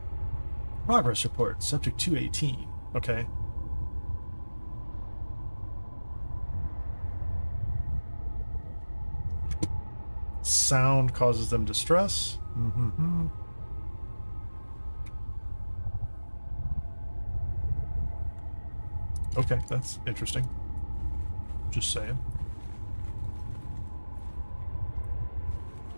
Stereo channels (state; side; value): inverted; both; correlation -1.00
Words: Progress report, subject 218. Okay. Sound causes them distress. Mm-hmm. Okay, that's interesting. Just saying.